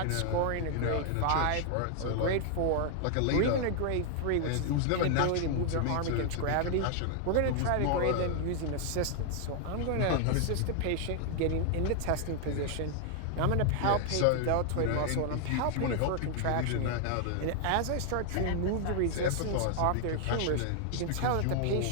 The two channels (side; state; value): both; different; correlation 0.00